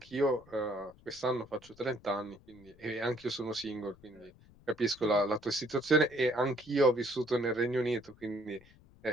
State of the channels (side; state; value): left; noise; rumble, 26 dB below the sound